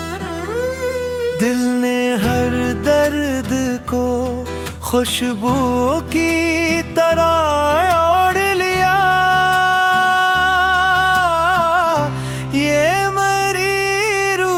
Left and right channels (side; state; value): both; identical; correlation 1.00